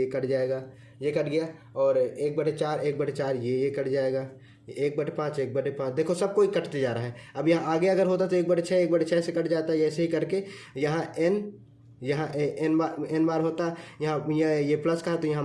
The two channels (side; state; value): both; identical; correlation 1.00